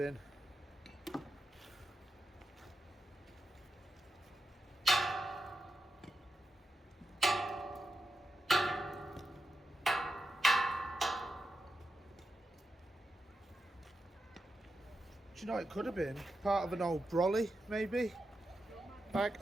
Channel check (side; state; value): both; normal; correlation 0.88